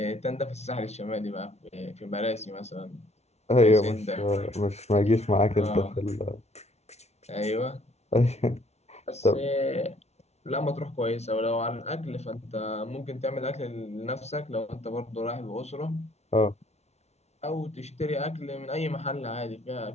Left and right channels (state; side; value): late; right; 0.31 ms